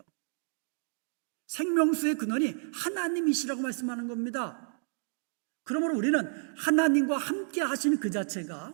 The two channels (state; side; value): silent; left; digital silence